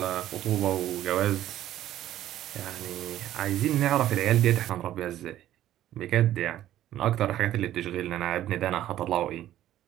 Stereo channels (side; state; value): left; quieter; 12.8 dB